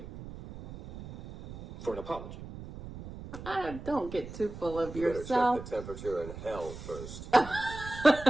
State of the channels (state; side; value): noise; right; rumble, 12 dB below the sound